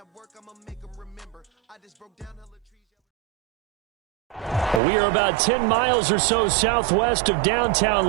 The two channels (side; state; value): left; drops out; at 4.8 s